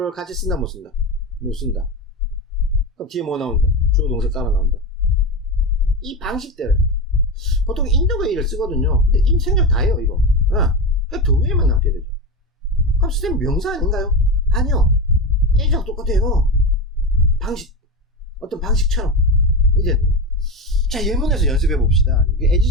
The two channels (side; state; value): both; normal; correlation 0.19